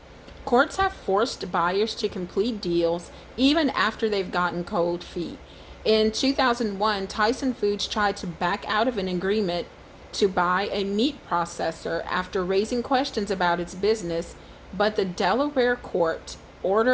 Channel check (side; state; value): both; identical; correlation 1.00